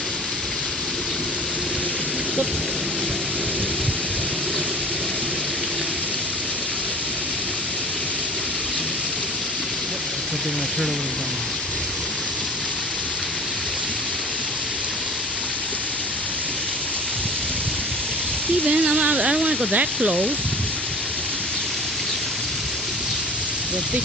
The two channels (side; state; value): both; normal; correlation 0.42